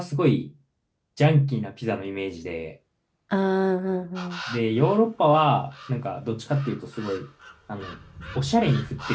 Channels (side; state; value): both; identical; correlation 1.00